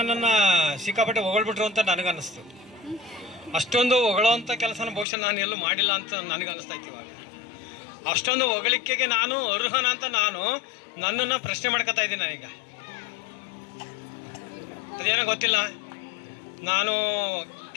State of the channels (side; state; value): right; drops out; at 5.1 s